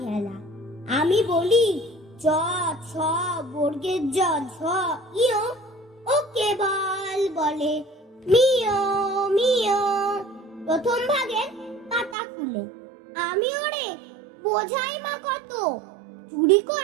হেলা। আমি বলি চ ছ বর্গের জ ঝ ইয়, ও কেবল বলে মিয় মিয়। প্রথম ভাগের পাতা খুলে আমি ওরে বোঝাই মা কত, চুরি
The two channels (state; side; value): drops out; left; at 12.2 s